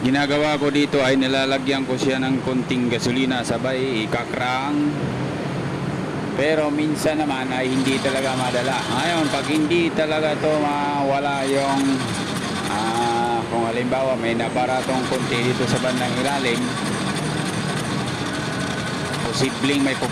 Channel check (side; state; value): both; identical; correlation 1.00